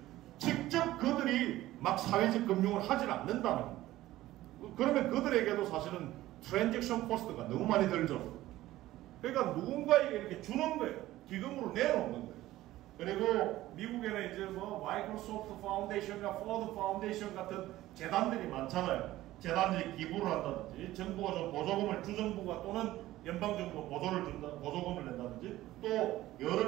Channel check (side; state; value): left; quieter; 15.8 dB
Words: 직접 그들이 막 사회적 금융을 하질 않는다는 겁니다. 그러면 그들에게도 사실은 트랜잭션 코스트가 너무 많이 들죠. 그러니까 누군가에게 이렇게 주는 거예요. 기금으로 내놓는 거예요. 그리고 미국에는 이제 뭐 마이크로소프트 파운데이션이나 포드 파운데이션 같은 재단들이 많잖아요. 재단들이 기부를 한다든지 정부가 좀 보조금을 주정부가 또는 연방정부가 보조금을 낸다든지 또